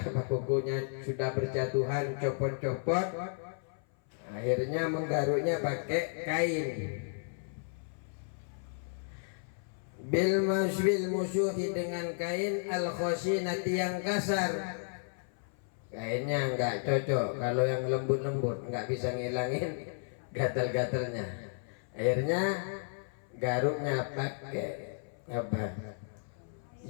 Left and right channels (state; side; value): silent; right; 56 dB below the other